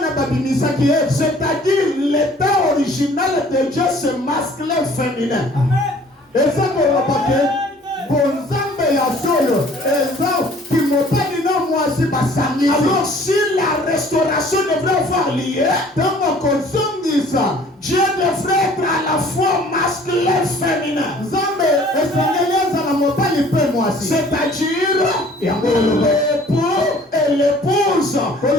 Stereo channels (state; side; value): normal; both; correlation 0.53